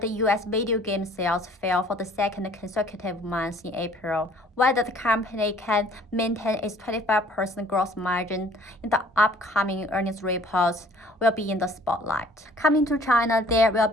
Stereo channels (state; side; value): normal; both; correlation 0.55